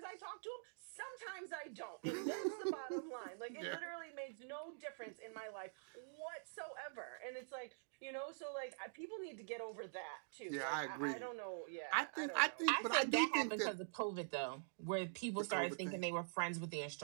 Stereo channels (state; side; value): silent; left; digital silence